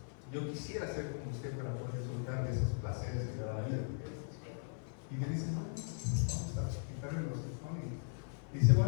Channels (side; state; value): right; silent; 52 dB below the other